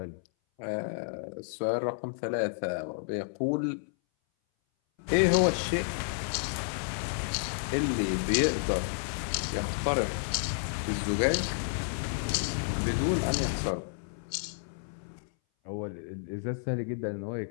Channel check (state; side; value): silent; right; 57 dB below the other